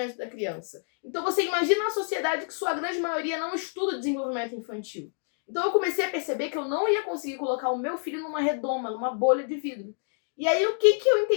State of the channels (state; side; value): silent; right; 60 dB below the other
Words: da criança. Então você imagina uma sociedade que sua grande maioria não estuda desenvolvimento infantil. Então eu comecei a perceber que eu não ia conseguir colocar o meu filho numa redoma, numa bolha de vidro. E aí o que eu